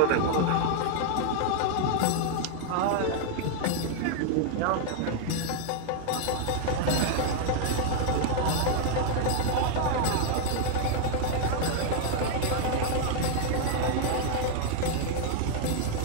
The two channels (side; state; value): both; different; correlation 0.00